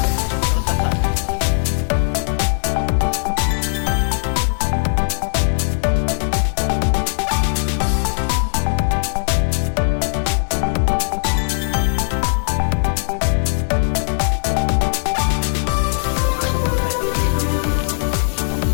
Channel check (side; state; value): right; silent; digital silence